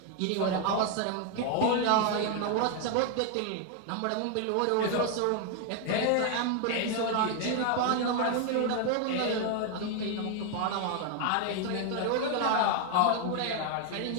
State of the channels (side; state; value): both; different; correlation 0.00